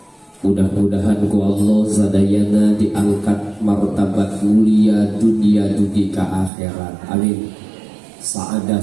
mudah-mudahan ku Allah sadayana diangkat martabat mulia dunia dugi ka akhirat amin.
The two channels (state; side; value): drops out; left; at 6.5 s